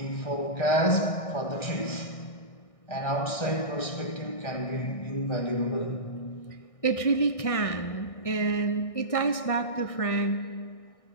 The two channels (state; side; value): late; right; 1.6 ms